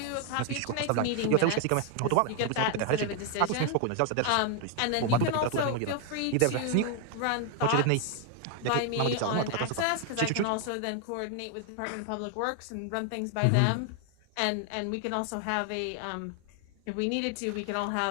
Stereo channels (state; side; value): different; both; correlation 0.00